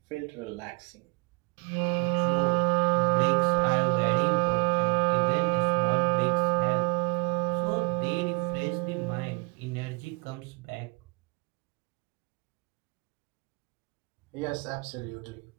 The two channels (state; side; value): quieter; left; 30.9 dB